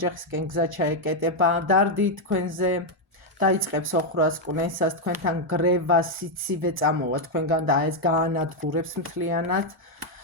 გზა ჩაეკეტება, დარდი თქვენზე, დაიწყებს ოხრას კვნესას, თქვენთან გრევა, სიცივე წამოვა თქვენგან და ეს გაანადგურებს მთლიანად,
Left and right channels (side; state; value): both; normal; correlation 0.01